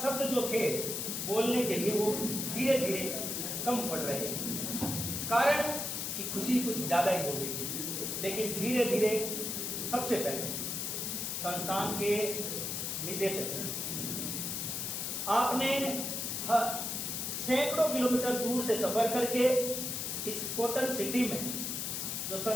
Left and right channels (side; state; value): left; noise; hiss, 2 dB below the sound